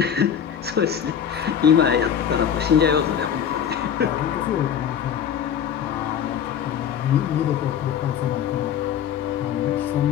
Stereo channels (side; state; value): right; quieter; 8.7 dB